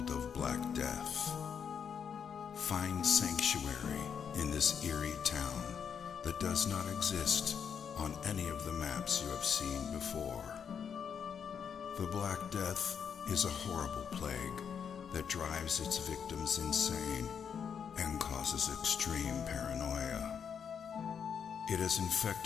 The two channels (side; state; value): right; quieter; 7.3 dB